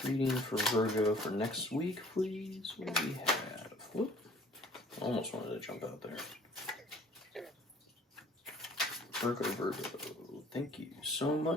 Reading for Virgo for next week, please. What do we have? Whoop. Almost wanted to jump out there. Virgo. Thank you so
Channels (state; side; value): normal; both; correlation 0.54